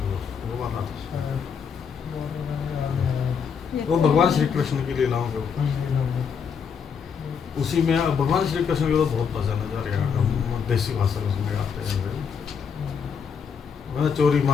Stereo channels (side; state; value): right; quieter; 6.6 dB